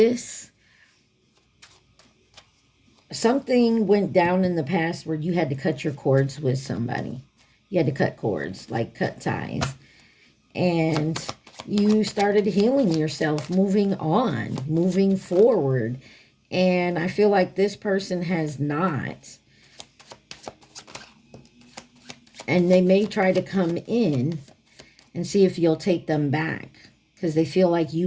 something went down in the past where you had to cut your cords with somebody. You had to cut cords, like cut ties. And you started healing yourself, moving on, moving forward. And I feel like this person has not. And they may try to come in and see if you'll take them back because they feel like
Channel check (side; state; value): both; identical; correlation 1.00